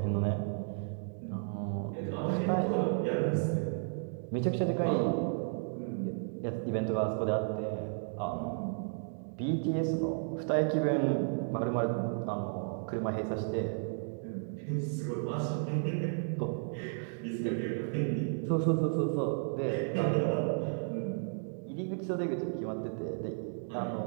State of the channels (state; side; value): silent; left; digital silence